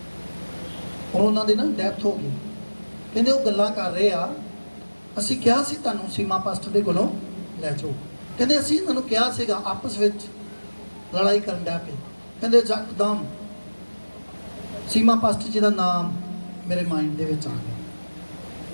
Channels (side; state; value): both; inverted; correlation -1.00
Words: ਔਰ ਉਹਨਾਂ ਦੀ ਨਾ ਡੈਥ ਹੋ ਗਈ। ਕਹਿੰਦੇ ਉਹ ਗੱਲਾਂ ਕਰ ਰਹੇ ਆ, ਅਸੀਂ ਕਿਹਾ ਸੀ ਤੁਹਾਨੂੰ ਸੀਮਾ ਪਾਸਟਰ ਦੇ ਕੋਲੋਂ ਲੈ ਜਾਓ। ਕਹਿੰਦੇ ਅਸੀਂ ਇਹਨਾਂ ਨੂੰ ਕਿਹਾ ਸੀਗਾ, ਆਪਸ ਵਿੱਚ ਲੜਾਈ ਕਰਨ ਡਿਆ ਪਏ। ਕਹਿੰਦੇ ਯਕਦਮ ਸੀਮਾ ਪਾਸਟਰ ਜੀ ਦਾ ਨਾਮ ਮੇਰੇ ਮਾਈਂਡ ਦੇ ਵਿੱਚ ਆ ਗਿਆ।